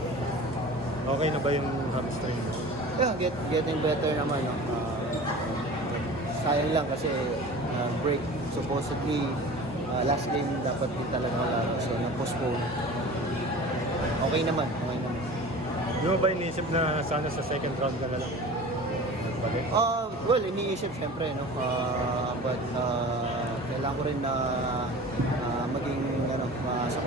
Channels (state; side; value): normal; both; correlation 0.39